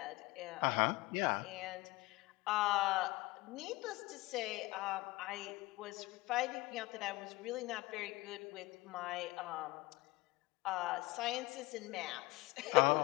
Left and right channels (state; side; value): quieter; right; 21.0 dB